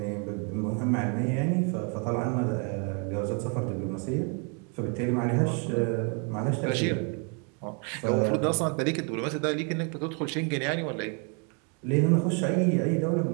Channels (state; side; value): quieter; left; 37.4 dB